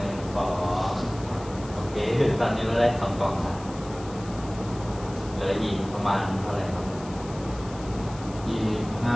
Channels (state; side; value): noise; left; hiss, 19 dB below the sound